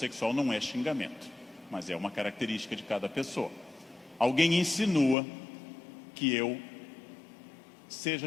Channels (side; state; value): right; drops out; at 5.2 s